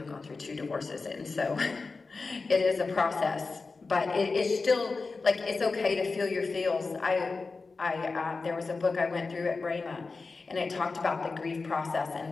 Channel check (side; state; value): right; quieter; 4.1 dB